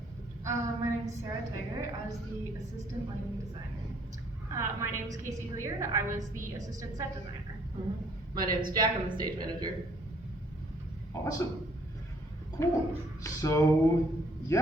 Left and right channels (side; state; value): both; normal; correlation 0.63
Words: My name is Sarah Tiger. I was the assistant lighting designer. My name is Casey Hilliard. I was the assistant set designer. My name is Jack. I'm the stage manager. Awesome. Cool. So